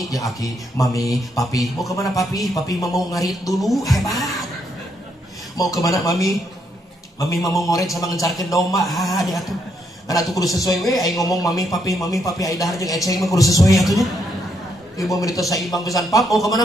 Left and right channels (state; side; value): normal; both; correlation 0.75